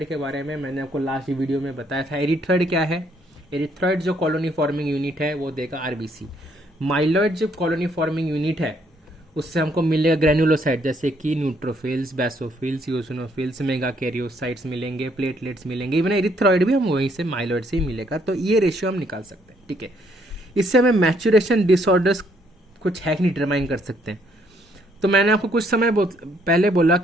के बारे में मैंने आपको लास्ट वीडियो में बताया था। एरिथ्रॉइड क्या है? एरिथ्रॉइड जो कॉलोनी फॉर्मिंग यूनिट है वो देगा आरबीसी। माइलॉइड जो कॉलोनी फॉर्मिंग यूनिट है उससे हमको मिलेगा ग्रेनुलोसाइट, जैसे कि neutrophils, basophils, eosinophils, mega karyocytes मिलेंगे, प्लेटलेट्स मिलेंगे। इवन एरिथ्रॉइड भी हम वहीं से माइलॉइड से ही मिलेगा। तो ये रेशियो हम निकाल सकते हैं, ठीक है। इससे हमें मैचुरेशन डिसऑर्डर्स कुछ है कि नहीं डिटरमाइन कर सकते हैं। तो मैंने आपको कुछ समय पहले बोला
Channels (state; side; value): normal; both; correlation 0.69